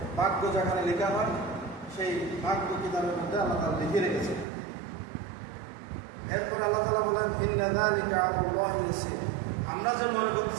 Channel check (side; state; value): left; drops out; at 4.5 s